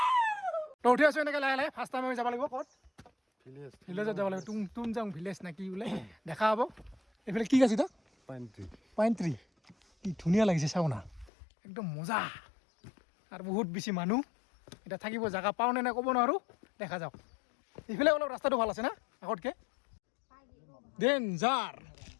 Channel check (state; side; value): drops out; right; at 11.3 s